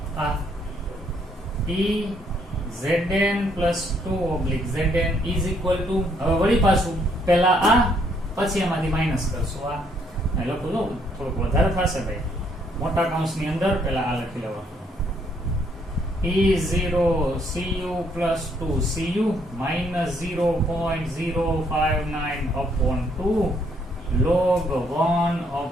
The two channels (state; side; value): normal; both; correlation 0.69